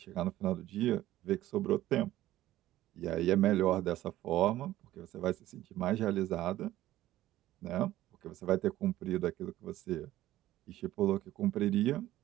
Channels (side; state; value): left; quieter; 14.7 dB